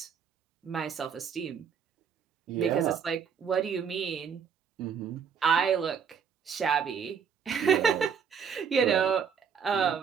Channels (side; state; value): left; quieter; 6.9 dB